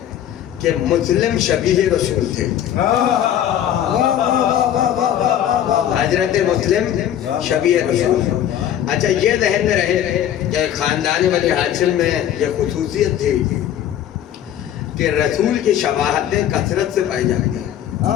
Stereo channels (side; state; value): right; quieter; 10.8 dB